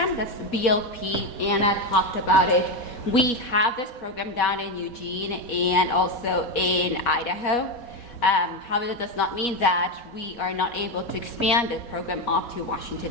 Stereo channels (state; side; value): late; right; 4.2 ms